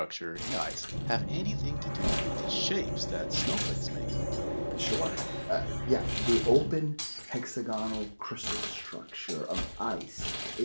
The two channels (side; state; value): both; inverted; correlation -1.00